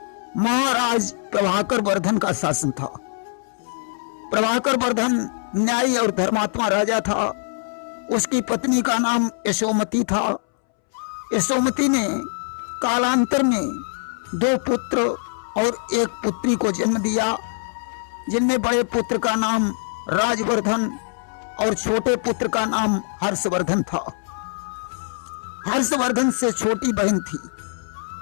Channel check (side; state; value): right; silent; 64 dB below the other